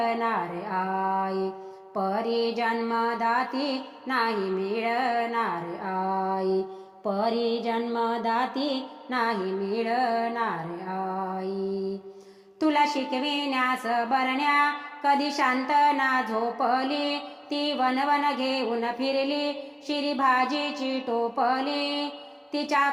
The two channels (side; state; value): both; identical; correlation 1.00